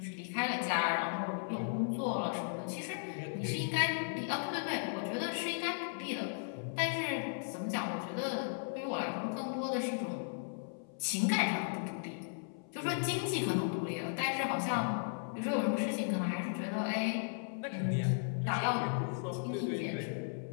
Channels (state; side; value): silent; right; 54 dB below the other